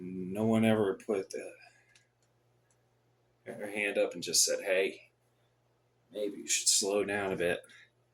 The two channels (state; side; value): identical; both; correlation 1.00